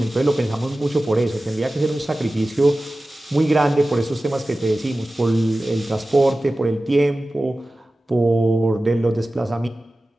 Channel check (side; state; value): both; normal; correlation 0.95